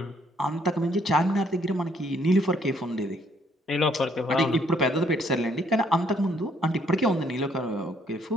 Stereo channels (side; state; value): both; normal; correlation 0.67